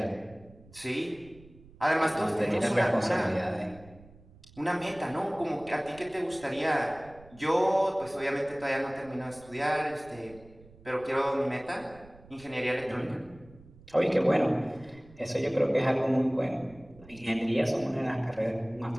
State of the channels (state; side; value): noise; right; rumble, 23 dB below the sound